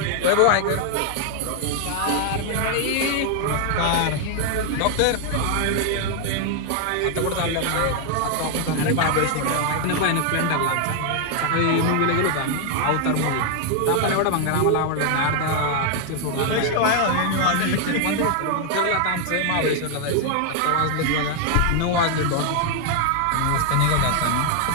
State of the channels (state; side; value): different; both; correlation 0.00